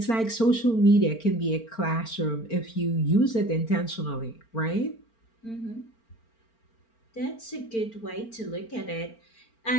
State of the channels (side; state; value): right; late; 4.4 ms